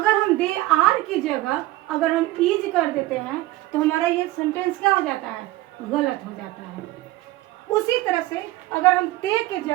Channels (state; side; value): quieter; left; 17.5 dB